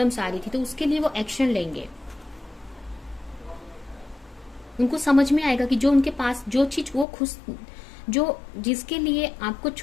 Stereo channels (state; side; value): drops out; right; at 7.1 s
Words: आ रही थी तो उसके लिए वो एक्शन लेंगे। उनको समझ में आएगा कि जो उनके पास जो चीज वो खुश जो जिसके लिए आपको